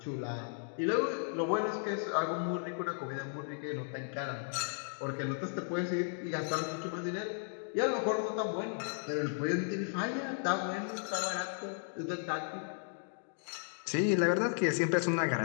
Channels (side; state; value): right; silent; digital silence